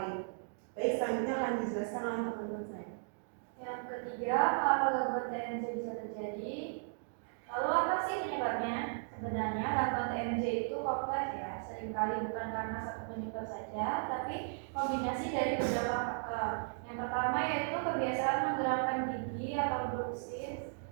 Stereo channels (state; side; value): silent; left; digital silence